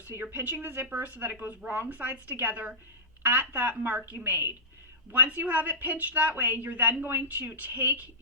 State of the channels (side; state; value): both; normal; correlation -0.18